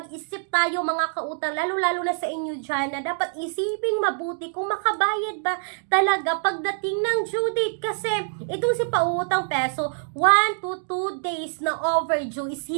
tayo mga kautang, lalo-lalo na sa inyo dyan, na dapat isiping mabuti kung makabayad ba talaga pagdating ng due date. Kasi itong si Pautang Peso, 1 to 2 days na overdue is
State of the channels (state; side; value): silent; left; digital silence